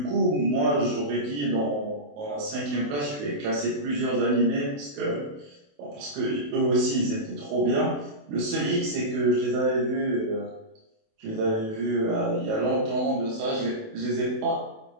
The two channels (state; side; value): late; left; 28 ms